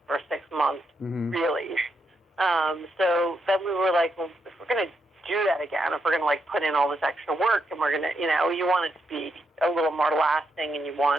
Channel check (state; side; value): normal; both; correlation 0.81